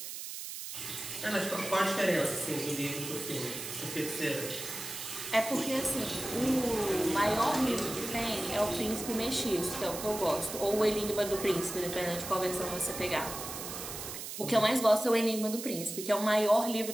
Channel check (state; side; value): noise; right; hiss, 8 dB below the sound